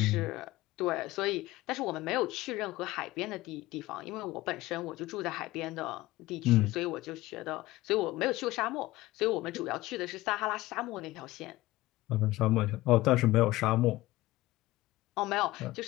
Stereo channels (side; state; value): right; quieter; 18.1 dB